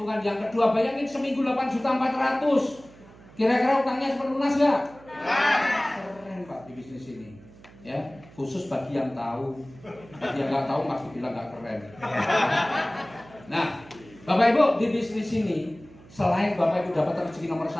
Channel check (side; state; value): right; noise; hum, 22 dB below the sound